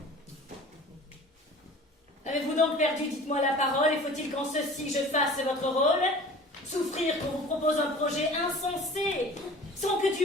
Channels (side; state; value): both; normal; correlation 0.43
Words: Avez-vous donc perdu, dites-moi la parole, et faut-il qu'en ceci je fasse votre rôle? Souffrir qu'on vous propose un projet insensé, sans que